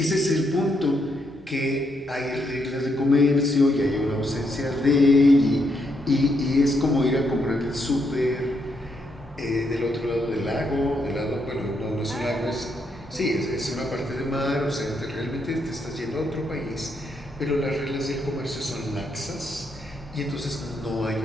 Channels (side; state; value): both; normal; correlation 0.78